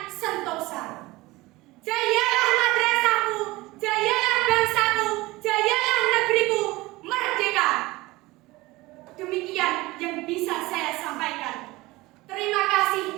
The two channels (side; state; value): left; quieter; 20.4 dB